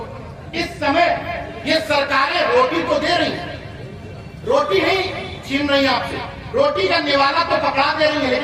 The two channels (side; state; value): both; identical; correlation 1.00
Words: इस समय ये सरकारें रोटी तो दे रही हैं, रोटी नहीं छीन रही आपसे, रोटी का निवाला तो पकड़ा दे रही है,